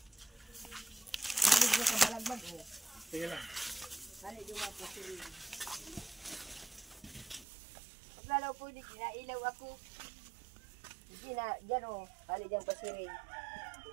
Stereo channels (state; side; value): drops out; left; at 7.5 s